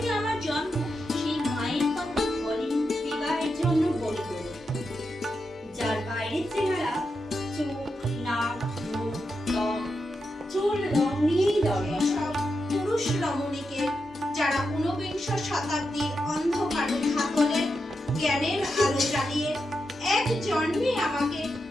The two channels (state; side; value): normal; both; correlation 0.87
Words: আমার জন্ম, সেই মায়ের কথা বলেন বিবাহের জন্য বলি বলে। যার বাইরের চেহারা, চোখ, নাক, মুখ, ত্বক, চুল রং নিয়েই দরকার। সব পুরুষ রমণীকে যারা ঊনবিংশ শতাব্দীর অন্ধকারে হাতলে জ্ঞানের আলো জ্বালিয়ে এক জন্মে আমাকে